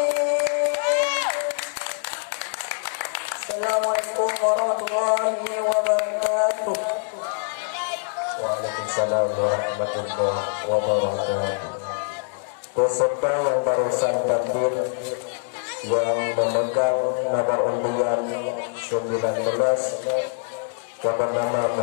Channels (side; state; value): right; silent; digital silence